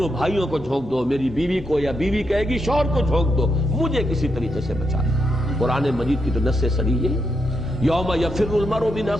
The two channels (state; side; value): normal; both; correlation 0.81